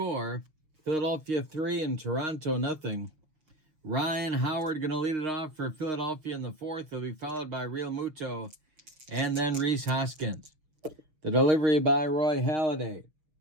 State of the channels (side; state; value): left; late; 6.5 ms